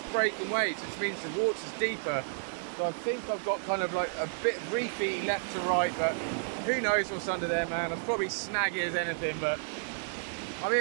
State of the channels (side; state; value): left; silent; digital silence